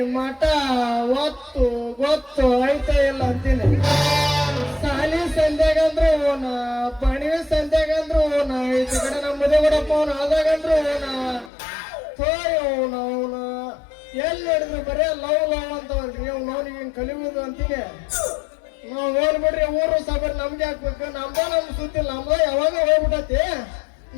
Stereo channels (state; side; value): drops out; right; at 11.5 s